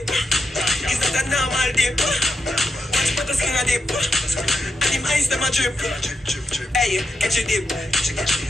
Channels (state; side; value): normal; both; correlation 0.87